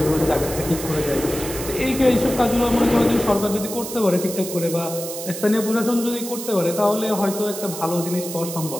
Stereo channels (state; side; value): noise; right; hiss, 9 dB below the sound